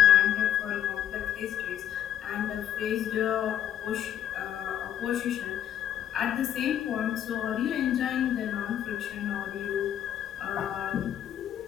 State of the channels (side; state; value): right; quieter; 10.5 dB